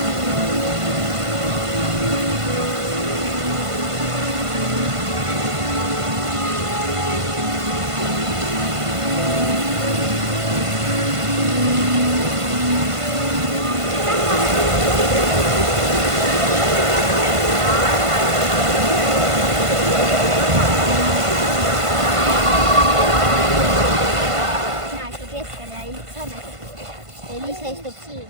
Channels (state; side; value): late; left; 1.5 ms